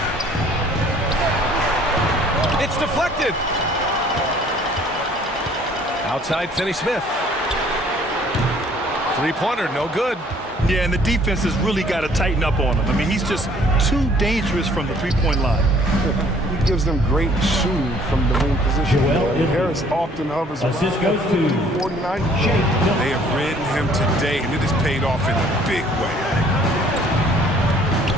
It's deflected. Outside Finney-Smith. Three-pointer, no good. Yeah, and the defense has really got to tighten up on him. I mean, he's just too dangerous from the three-point line. He gives them great shooting from the wing position. Harris often hovers around 49. They have ridden him today, and it has paid off in a big way.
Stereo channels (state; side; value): normal; both; correlation 0.57